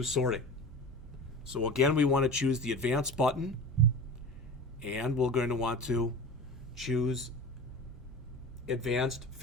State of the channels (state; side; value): normal; both; correlation 0.33